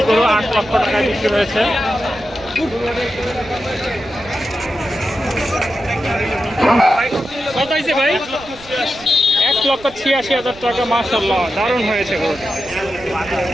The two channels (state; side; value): noise; right; rumble, 20 dB below the sound